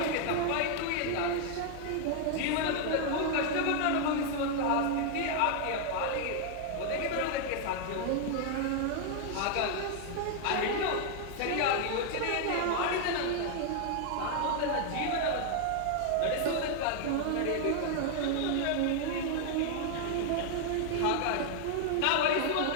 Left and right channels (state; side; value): different; both; correlation 0.00